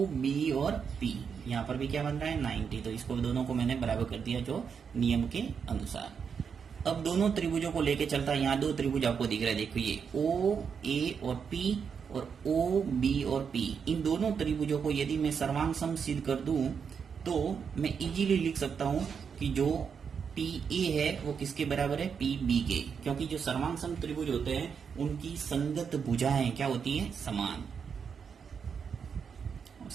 बी और पी यहाँ पर भी क्या बन रहा है 90। तो इसको दोनों को मैंने बराबर कर दिया जो नियम के अनुसार। अब दोनों त्रिभुजों को लेके चलता है। यहाँ दो त्रिभुज आपको दिख रहा है, देखो ये ओ ए और पी और ओ बी और पी। इन दोनों त्रिभुजों को यदि मैं सर्वांग सम सिद्ध कर दूं तो मैं इजीली लिख सकता हूं कि जो पी ए है वो किसके बराबर है पी बी के, क्योंकि जो सर्वांग सम त्रिभुज होते हैं उनकी संगत भुजाएं क्या होती है समान।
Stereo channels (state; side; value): quieter; left; 6.6 dB